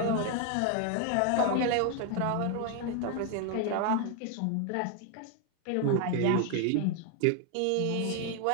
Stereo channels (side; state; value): both; different; correlation 0.01